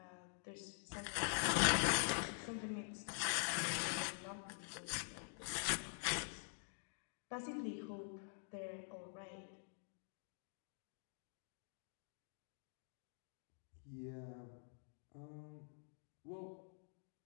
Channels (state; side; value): silent; right; digital silence